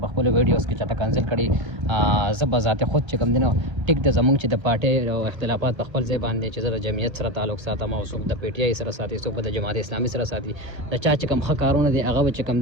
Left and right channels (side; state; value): left; late; 1.3 ms